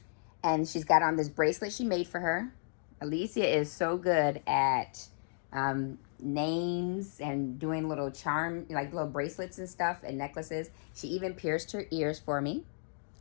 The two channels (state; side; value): silent; right; digital silence